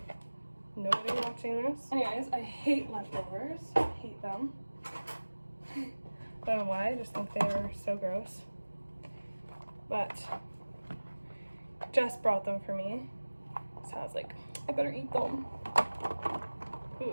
nobody watching this. Anyways, I hate leftovers. I hate them. Don't know why, I just think they are so gross. But Jess brought them for me, so I was like, I better eat them.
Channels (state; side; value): inverted; both; correlation -1.00